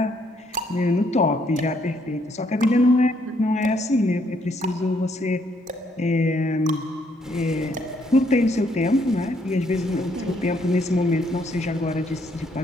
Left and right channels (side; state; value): both; normal; correlation 0.71